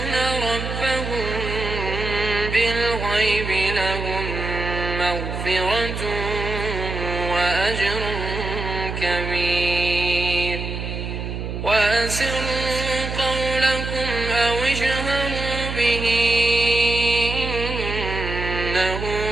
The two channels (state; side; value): noise; right; hum, 5 dB below the sound